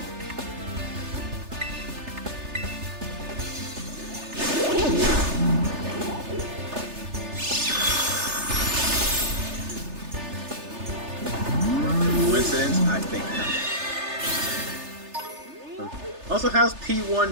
Coincidence? I think not. Also, how's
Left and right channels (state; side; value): late; left; 3.3 ms